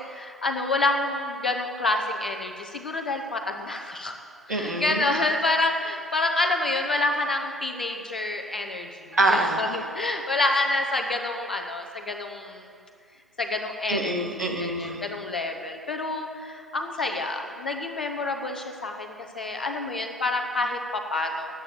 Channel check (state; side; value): normal; both; correlation 0.57